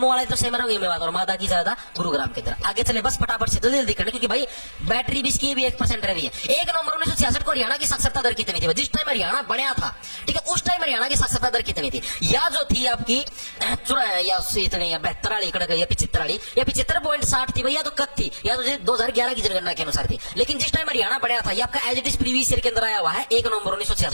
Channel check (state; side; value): inverted; both; correlation -1.00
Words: वाले तो सेम रहोगे मेवात और मादा की ज्यादा गुरुग्राम के अंदर। आगे चले बस फटाफट से जल्दी जल्दी करना क्योंकि भाई बैटरी भी इसकी भी 1% रही है। 1 नवंबर 1966 को हरियाणा की साक्षरता दर कितनी थी जिस टाइम हरियाणा बढ़िया था। ठीक है उस टाइम हरियाणा की साक्षरता दर कितनी थी या जो थी आपकी या इतनी या 72 या 75.60 थी भैया तो कब थी या तो 2011 की जनगणना के अनुसार थी। लेकिन जिस टाइम हरियाणा बढ़िया था ये आपका as it is previous year के अंदर आया हुआ है 1 नवंबर